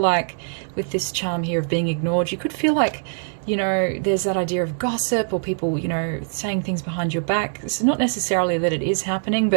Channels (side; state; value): left; silent; digital silence